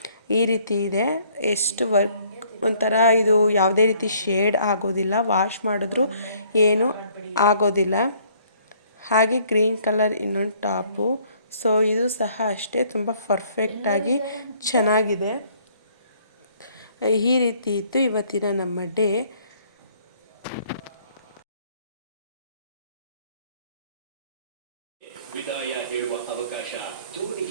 ಈ ರೀತಿ ಇದೆ. ಎಷ್ಟು ವರ್ಕ್ ಒಂಥರ ಇದು ಯಾವುದೇ ರೀತಿ ಶೇಡ್ ಆಗೋದಿಲ್ಲ, ವಾಶ್ ಮಾಡಿದ್ರೂ ಏನೂ ಆಗೋದಿಲ್ಲ. ಹಾಗೆ ಗ್ರೀನ್ ಕಲರ್ ಇನ್ನೊಂದು ಟಾಪು. ಸೊ ಇದು ಸಹ ಅಷ್ಟೇ ತುಂಬ ಪರ್ಫೆಕ್ಟಾಗಿ ಚೆನ್ನಾಗಿದೆ. ಈ ರೀತಿ ಇತ್ತು ಇವತ್ತಿನ ನಮ್ಮ ಡೇ.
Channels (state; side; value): inverted; both; correlation -0.62